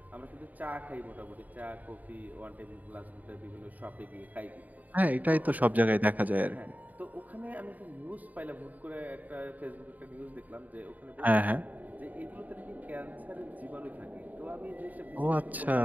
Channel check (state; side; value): late; left; 0.078 ms